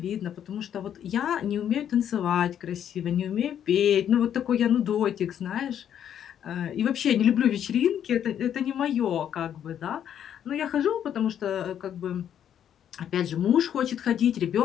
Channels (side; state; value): right; quieter; 9.6 dB